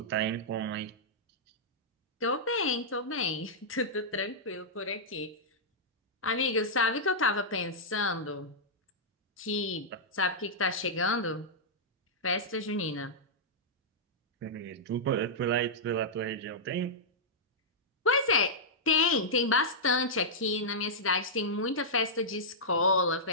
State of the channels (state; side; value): normal; both; correlation -0.11